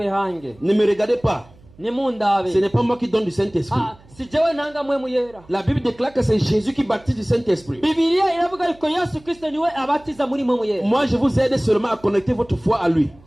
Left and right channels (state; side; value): noise; right; hum, 26 dB below the sound